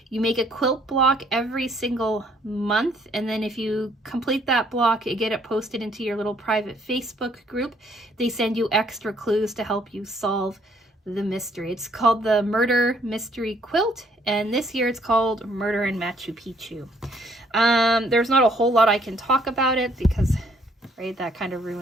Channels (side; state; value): both; normal; correlation 0.65